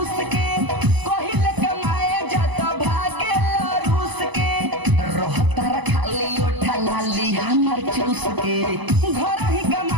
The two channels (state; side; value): late; left; 1.0 ms